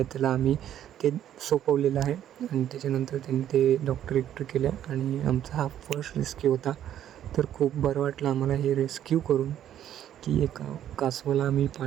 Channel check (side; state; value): left; quieter; 10.9 dB